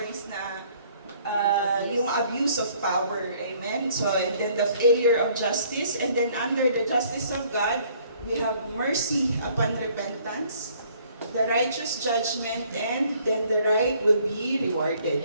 na yung abuse of power, amen? So, and then the failure of justice, and then under the justice of God, we have mercy upon repentance, the righteous judgment, and then the right will be rewarded,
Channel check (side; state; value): both; inverted; correlation -0.60